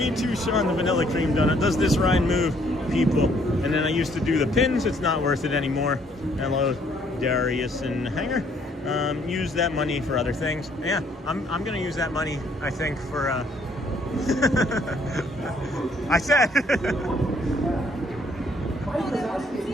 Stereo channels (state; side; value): normal; both; correlation 0.65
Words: too, Sean, the vanilla cream donut does this ride move, people. And then I used to do the pins. It's not worth it anymore. Hello, Darius and Hanger. Use that money for other things. Yeah, I'm gonna use that money, I think, for I said